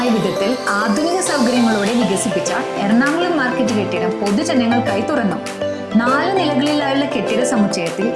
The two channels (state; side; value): identical; both; correlation 1.00